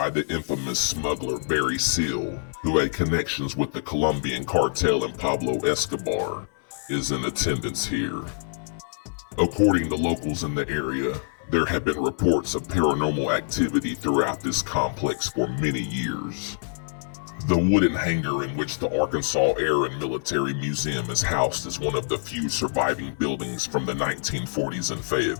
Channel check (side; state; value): right; silent; 61 dB below the other